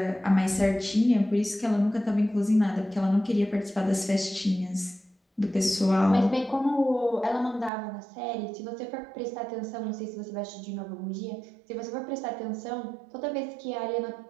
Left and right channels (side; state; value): left; drops out; at 7.7 s